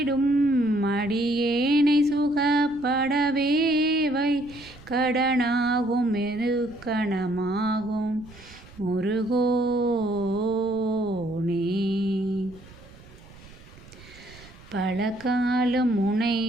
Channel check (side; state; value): right; noise; rumble, 21 dB below the sound